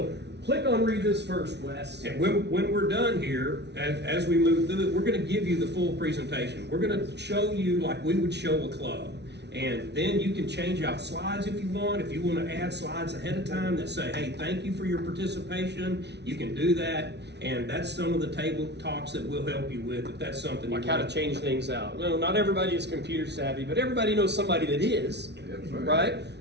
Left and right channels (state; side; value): late; left; 0.50 ms